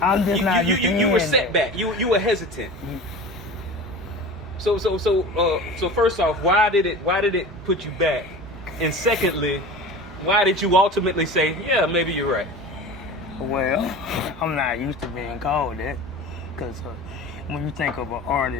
I'm just not. You were set back. You were hesitant. So first off, why did it put you back? And secondly, why did you ultimately say, yeah, maybe you're right? Well, I'm not used to being called that, because when you think of an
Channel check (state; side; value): normal; both; correlation 0.35